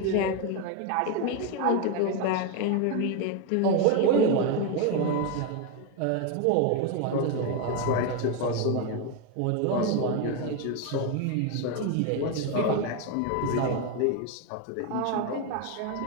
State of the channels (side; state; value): both; different; correlation 0.02